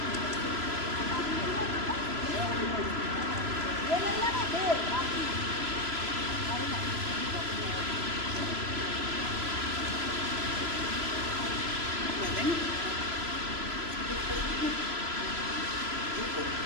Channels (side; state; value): left; late; 3.0 ms